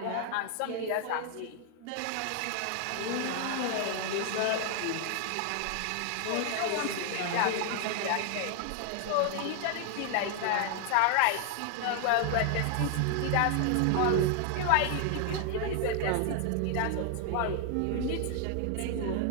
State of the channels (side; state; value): both; different; correlation 0.00